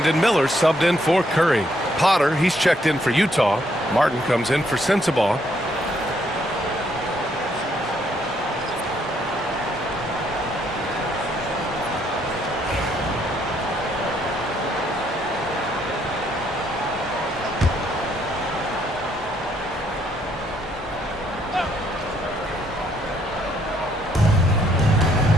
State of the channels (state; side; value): normal; both; correlation 0.71